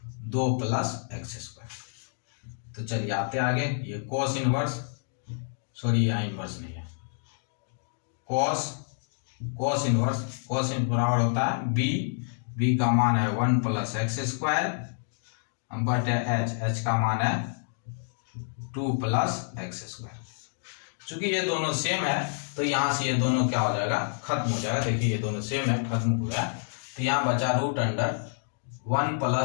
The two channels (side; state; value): right; silent; digital silence